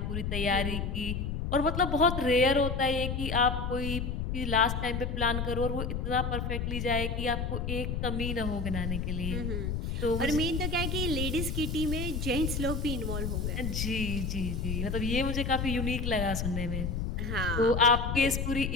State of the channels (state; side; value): noise; left; rumble, 2 dB below the sound